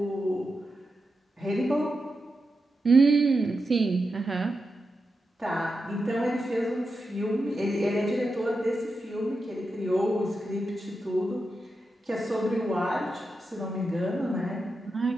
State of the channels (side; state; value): both; normal; correlation 0.89